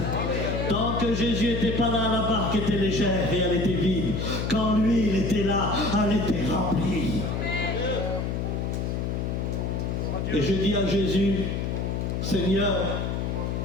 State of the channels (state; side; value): noise; left; hum, 1 dB below the sound